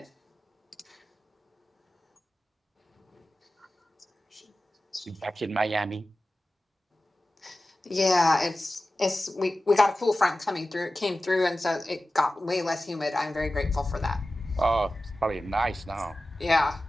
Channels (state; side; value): normal; both; correlation 0.95